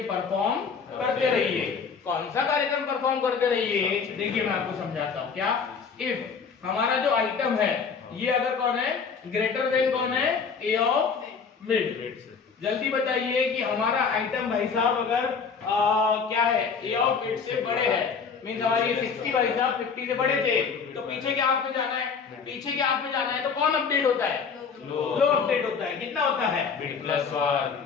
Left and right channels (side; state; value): right; quieter; 5.8 dB